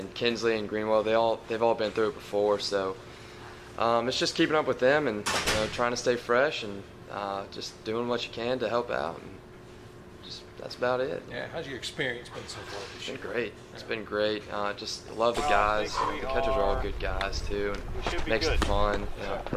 Kinsley and Greenwell. They've all been through it before, so it's just keeping up with them and trying to stay fresh and just doing what you can to help out. And that's about it. Yeah, how's your experience been so far this year? It's been great. It's been great. Just love the guys. The catchers are all good guys too, and makes it fun.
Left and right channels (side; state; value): both; identical; correlation 1.00